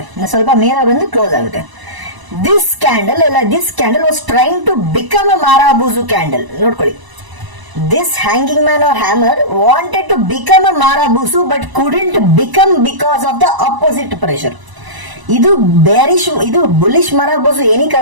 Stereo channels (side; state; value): left; late; 1.0 ms